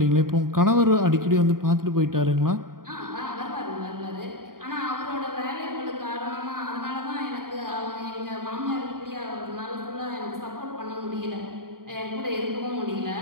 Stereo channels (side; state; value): left; late; 0.91 ms